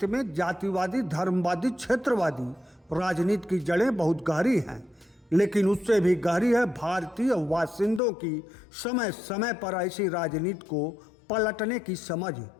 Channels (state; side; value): drops out; right; at 8.0 s